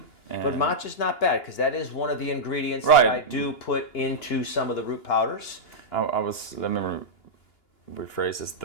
But matcha's not bad, because that is one of the ingredients Right. that I do put into some of the root powders. Let me rephrase this,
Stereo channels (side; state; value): right; late; 2.9 ms